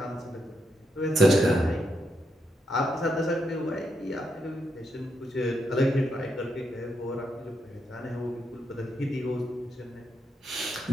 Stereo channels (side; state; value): both; normal; correlation 0.81